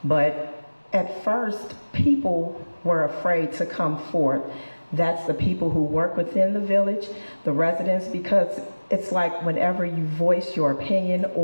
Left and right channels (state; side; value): inverted; both; correlation -1.00